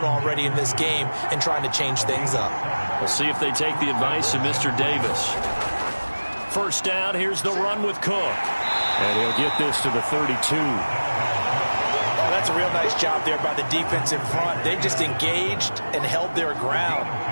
already in this game and trying to change things up. We'll see if they take the advice of Mr. Davis. First down, here's the run with Cook. And he'll get this to the 32. Oh, that's a real nice job there by the defense in front. They just engaged and held their ground.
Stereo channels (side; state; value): both; inverted; correlation -1.00